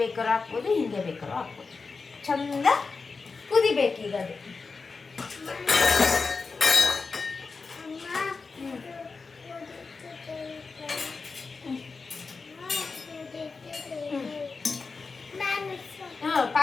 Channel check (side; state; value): right; quieter; 4.4 dB